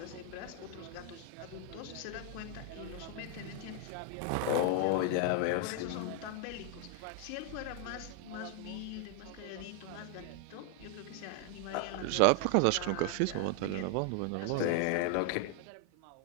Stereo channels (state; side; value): different; both; correlation 0.00